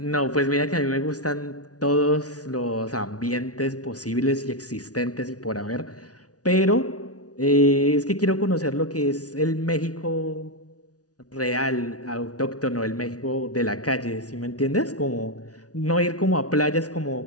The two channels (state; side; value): late; right; 0.68 ms